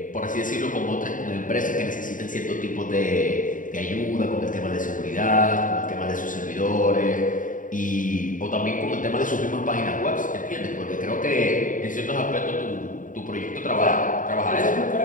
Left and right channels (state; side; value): late; right; 0.38 ms